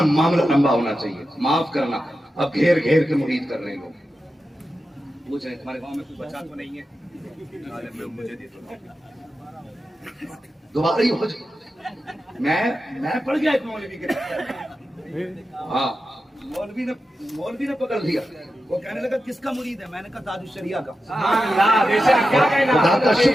मामला लंबा होना चाहिए, माफ करना। अब घेर घेर के मुरीद कर रहे हैं लोग। पूछ रहे तुम्हारे गांव में कोई बच्चा तो नहीं है, मुझे दे दो। दोबारा ही हो जाए। मैं पढ़ गया एक मौलवी के, हाँ मौलवी ने पकड़ लिया। वो कहने लगा किसका मुरीद है? मैंने कहा ताजुश शरिया का। खुदा का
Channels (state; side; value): normal; both; correlation 0.91